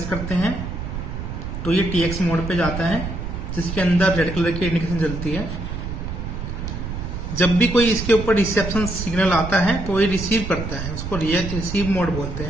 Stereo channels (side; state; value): right; noise; rumble, 6 dB below the sound